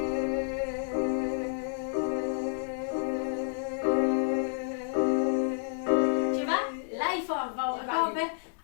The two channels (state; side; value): silent; right; digital silence